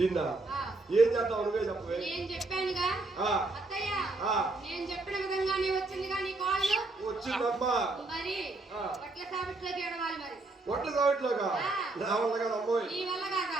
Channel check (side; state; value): left; quieter; 3.1 dB